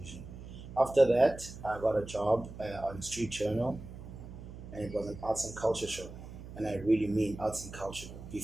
After that, I got a job on Street Journal, and it was an arts and culture show. And I really mean arts and culture,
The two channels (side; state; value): right; noise; hum, 13 dB below the sound